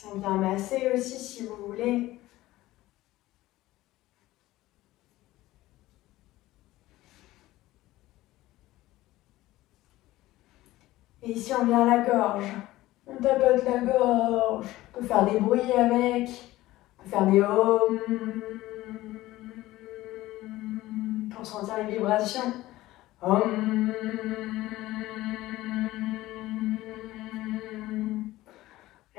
On vient masser aussi si vous voulez. Et ici, on vient à la gorge. On tapote la gorge. On peut faire des bruits avec. On peut faire des ohms pour sentir les vibrations. Om.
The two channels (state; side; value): quieter; right; 16.9 dB